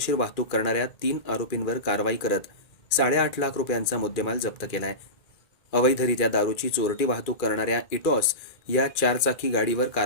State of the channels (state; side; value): late; right; 2.3 ms